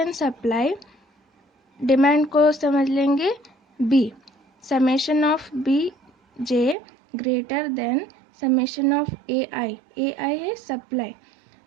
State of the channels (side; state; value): left; drops out; at 6.8 s